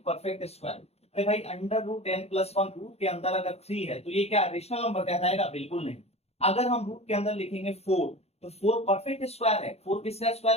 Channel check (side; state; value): right; late; 0.30 ms